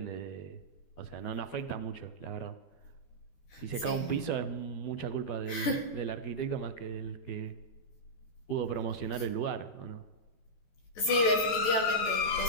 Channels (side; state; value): right; late; 14 ms